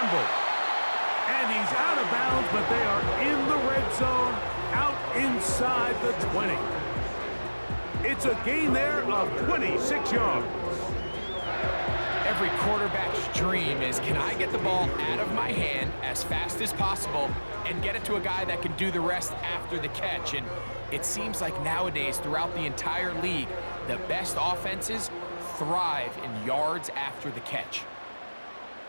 And he's out of bounds, but they are in the red zone, out inside the 20. It's a gain there of 26 yards. Every quarterback's dream is, can I get the ball out of my hand as fast as possible and get it to a guy that can do the rest after the catch? And it seems like nowadays, throughout the entire league, the best offenses thrive in yards after the catch.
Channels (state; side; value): inverted; both; correlation -1.00